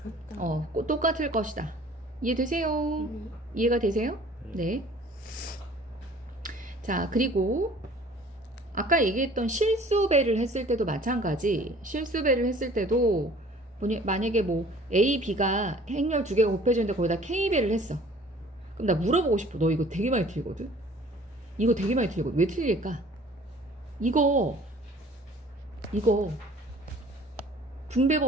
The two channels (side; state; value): both; normal; correlation 0.51